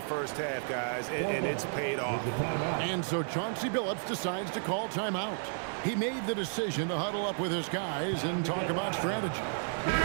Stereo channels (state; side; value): silent; left; digital silence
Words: first half, guys, and it's paid off. And so Chauncey Billups decides to call timeout. He made the decision to huddle up with his guys and talk about strategy.